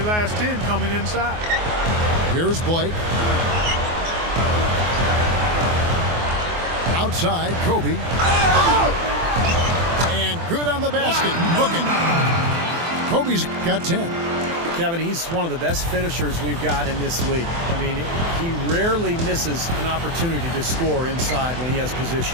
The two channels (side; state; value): left; late; 24 ms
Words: last 10 coming inside. Here's Blake. Outside, Kobe. And good on the basket. Booking. Kobe's got 10. Kevin, he's one of the best finishers we've got in this league. I mean, he rarely misses an opportunity to score inside when he has